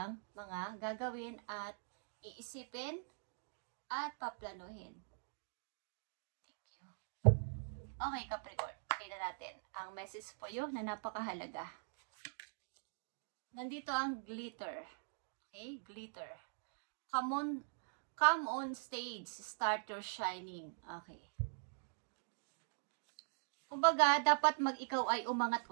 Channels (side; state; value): left; silent; digital silence